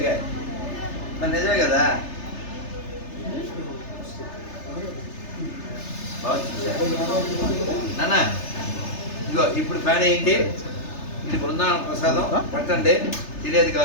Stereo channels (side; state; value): right; late; 3.3 ms